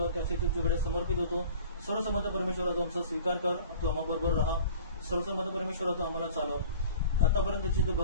त्या स्थितीत तुझ्याकडे समर्पित होतो. सर्वसमर्थ परमेश्वरा, तू आमचा स्वीकार कर, तू आम्हाबरोबर राहा. सर्वसमर्थ परमेश्वरा, तू आम्हाला चालव. आतापर्यंतची तू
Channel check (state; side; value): inverted; both; correlation -0.44